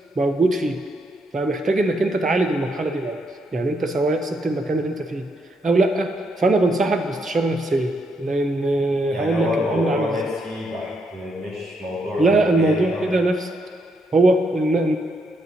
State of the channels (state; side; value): normal; both; correlation 0.77